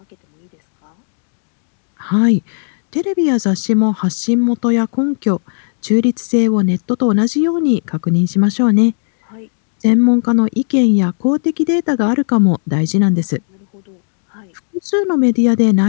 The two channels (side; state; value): right; silent; digital silence